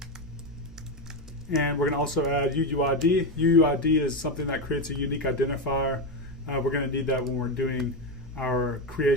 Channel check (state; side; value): normal; both; correlation 0.11